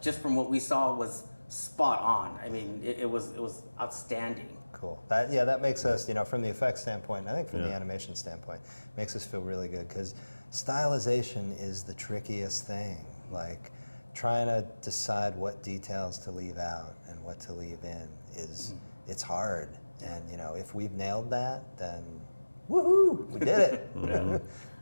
just from what we saw was spot on. I mean, it was outstanding. Cool. That makes us, you know, from the effects standpoint, and I think from the Yeah. animation standpoint, makes us feel really good, because stylization is the trickiest thing. Like, trying to decide what details to leave out and what to leave in it's hard. And you know, if we've nailed that, then woohoo, we did it. You know?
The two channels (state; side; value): inverted; both; correlation -1.00